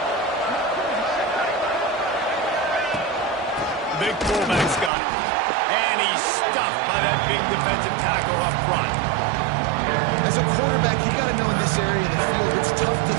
Big fullback's got it. And he's stuffed by that big defensive tackle up front. As a quarterback, you got to know in this area of the field, it's tough to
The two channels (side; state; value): left; drops out; at 4.9 s